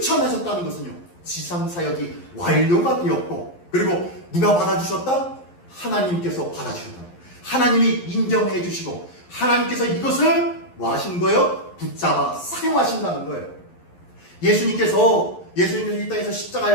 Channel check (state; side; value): late; right; 11 ms